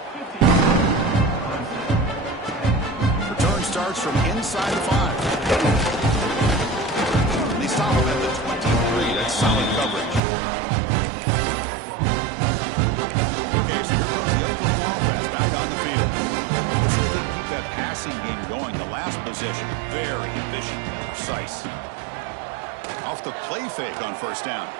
Return starts from inside the 5. And they stop him at the 23. That's solid coverage. Okay, so here comes the Oklahoma offense back on the field. Let's see if they can keep that passing game going. The last possession, very efficient, precise. Off the play fake on first down.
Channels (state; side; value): drops out; left; at 10.2 s